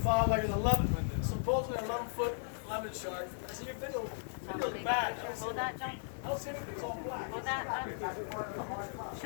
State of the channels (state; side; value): silent; right; digital silence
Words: like an 11, supposedly 11-foot lemon shark. I see your video. It looks bad. I don't know that. I don't see anything, it's all black. Well,